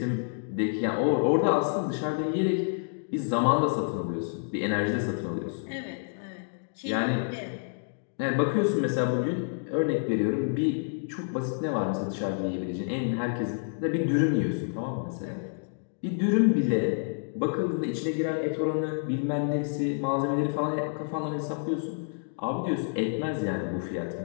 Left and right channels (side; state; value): right; silent; digital silence